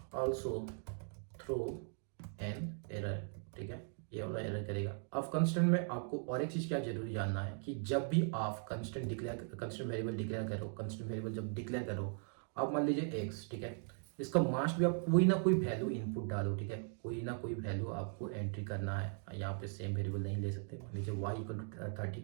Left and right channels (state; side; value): silent; left; 52 dB below the other